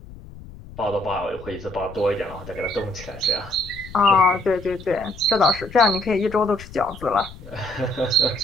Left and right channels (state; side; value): noise; left; rumble, 17 dB below the sound